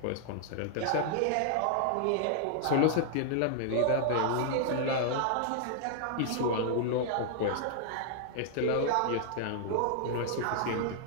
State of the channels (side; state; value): both; different; correlation -0.01